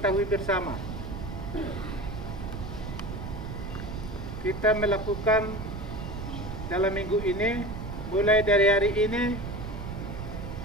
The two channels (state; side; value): noise; right; rumble, 7 dB below the sound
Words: bersama. Kita melakukan dalam minggu ini, mulai dari hari ini